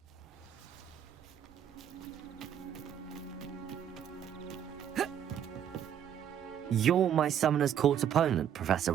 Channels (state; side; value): quieter; left; 9.4 dB